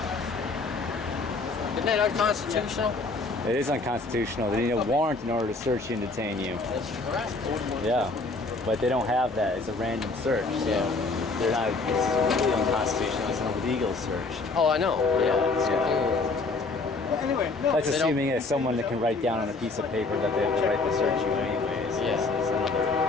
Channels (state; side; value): quieter; right; 3.6 dB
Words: Isn't that unconstitutional? It is unconstitutional. They need a warrant in order to search you and detain you. That's correct. Yeah, but they don't have that. It's a random search, so they're not. It's really unconstitutional. It's an illegal search. Oh, I know. Anyway, no. That's assuming it's someone that can write down on a piece of paper that they have the right to search you anyways. Yeah. It's